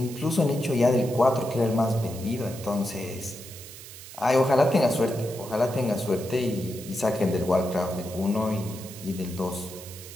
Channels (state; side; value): noise; right; hiss, 15 dB below the sound